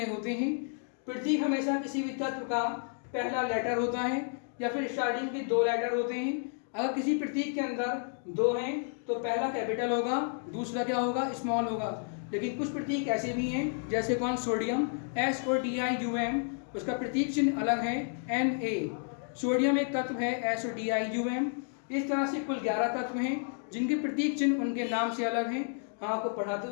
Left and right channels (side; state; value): right; silent; 57 dB below the other